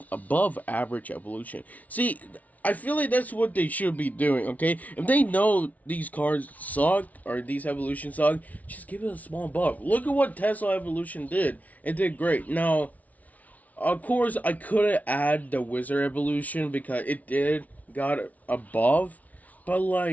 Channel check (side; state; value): right; late; 0.072 ms